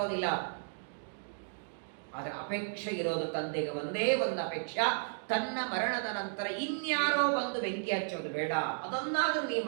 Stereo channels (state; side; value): silent; left; digital silence